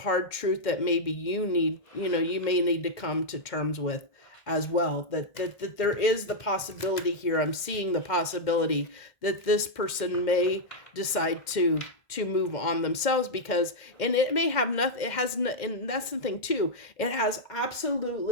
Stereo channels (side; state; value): right; late; 1.6 ms